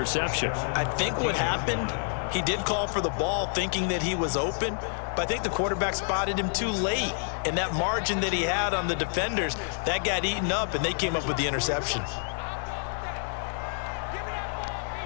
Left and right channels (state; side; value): silent; right; 59 dB below the other